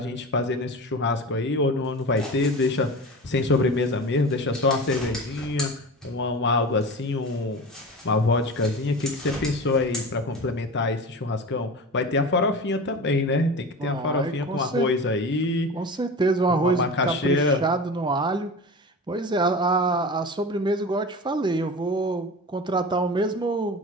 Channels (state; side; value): normal; both; correlation 0.31